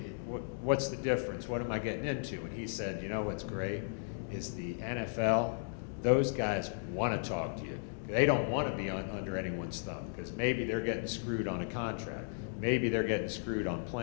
the difference? What am I getting into? And he said, what's great is the NFL, those guys want to talk to you. They don't want to be under anyone's thumb because maybe they're getting screwed on a contract. Maybe they're getting screwed on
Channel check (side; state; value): right; silent; digital silence